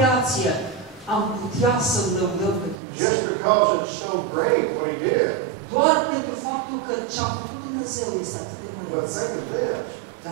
am putea să-L lăudăm pe Dumnezeu. Just because it's so great what He did. Doar pentru faptul că ce a făcut Dumnezeu este atât de But măreț. think of this.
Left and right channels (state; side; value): drops out; left; at 2.8 s